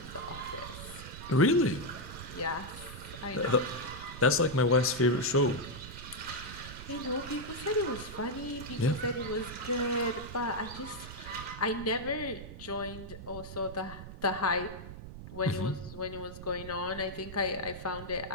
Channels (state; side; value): noise; right; rumble, 12 dB below the sound